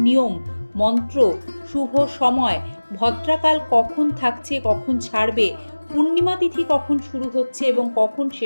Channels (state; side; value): inverted; both; correlation -1.00